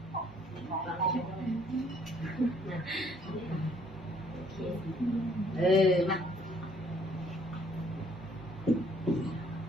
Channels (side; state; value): both; normal; correlation 0.62